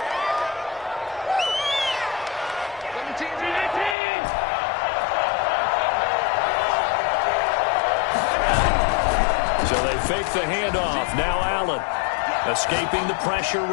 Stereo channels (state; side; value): drops out; right; at 4.0 s